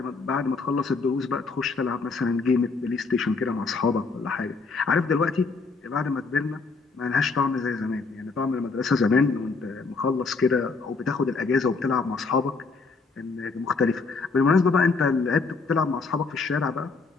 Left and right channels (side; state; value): right; quieter; 4.3 dB